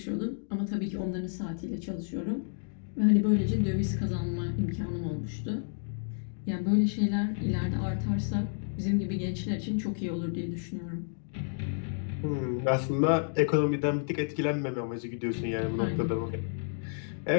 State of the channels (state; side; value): silent; right; digital silence